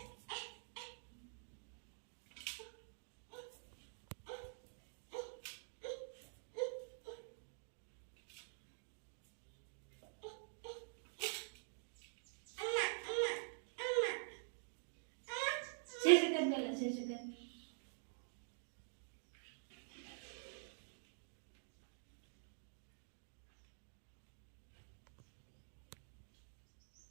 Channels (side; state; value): left; silent; digital silence